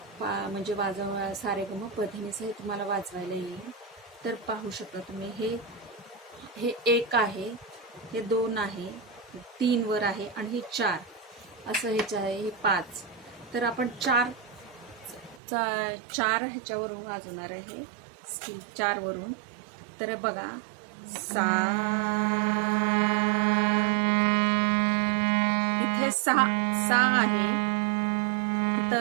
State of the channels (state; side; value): drops out; left; at 15.4 s